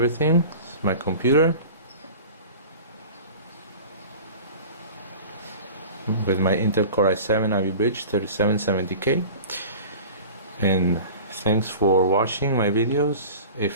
It's my computer with my Intel Core i7 Ivy Bridge 3770K. And thanks for watching my videos.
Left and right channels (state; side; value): inverted; both; correlation -0.38